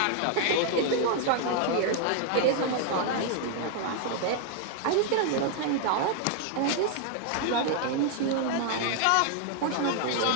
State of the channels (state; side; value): different; both; correlation 0.00